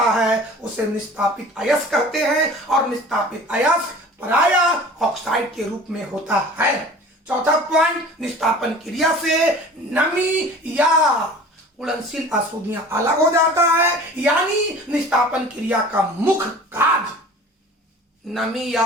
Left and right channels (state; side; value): normal; both; correlation 0.43